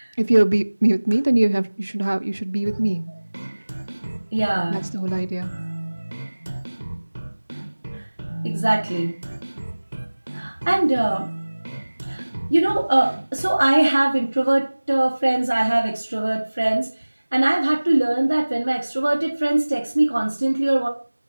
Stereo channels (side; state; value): both; inverted; correlation -1.00